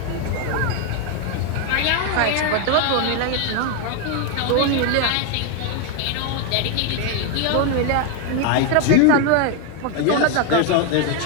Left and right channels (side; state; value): both; different; correlation 0.01